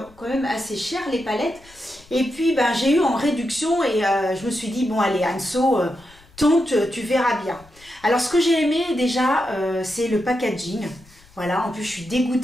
quand même assez cher les palettes. Et puis, j'ai eu en réduction et je me suis dit, bon, allez, Anso, tente, tu verras bien. Alors, ce que j'ai aimé déjà, c'est le packaging. Voilà, en plus, je suis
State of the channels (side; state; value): left; noise; rumble, 26 dB below the sound